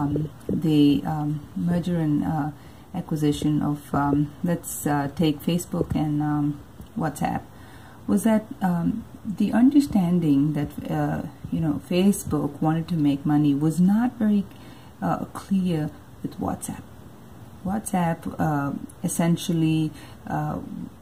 the merger and acquisition of, let's take Facebook and WhatsApp, was that the understanding that Facebook wanted to make money was not very clear with WhatsApp. WhatsApp essentially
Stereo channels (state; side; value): identical; both; correlation 1.00